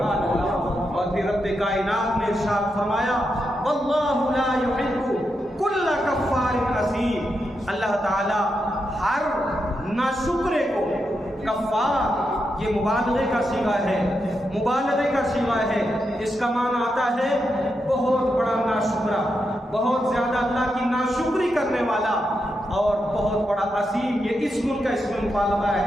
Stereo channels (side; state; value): both; normal; correlation 0.85